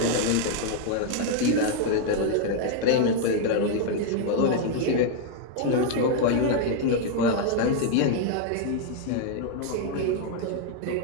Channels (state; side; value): different; both; correlation 0.00